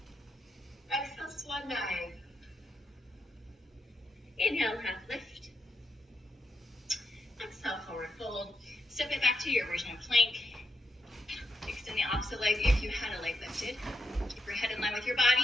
Exhale, swan dive. Inhale, half lift. Exhale, forward fold. Step it back to your version of plank. Extend the opposite leg if you had a leg lifted. Keep your head in line with your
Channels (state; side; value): normal; both; correlation 0.84